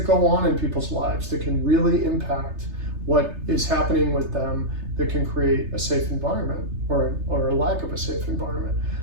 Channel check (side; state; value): left; late; 3.3 ms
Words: go on in people's lives that can really impact what is happening with them, that can create a safe environment or a lack of a safe environment.